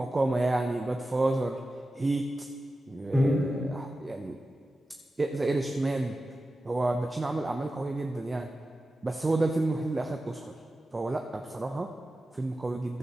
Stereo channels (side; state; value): both; normal; correlation 0.93